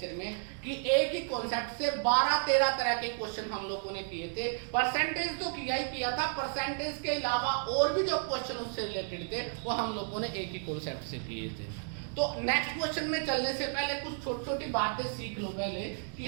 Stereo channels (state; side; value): silent; left; 56 dB below the other